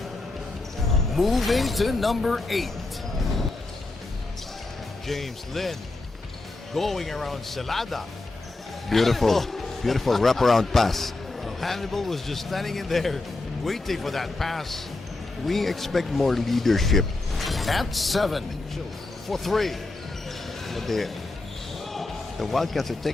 Moving to number 8. James Lin going around Celada. Beautiful, beautiful wraparound pass. Hannibal was just standing in there waiting for that pass. We expect more leadership. At 7 for 3. But the Wildcats are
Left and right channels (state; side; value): quieter; right; 3.1 dB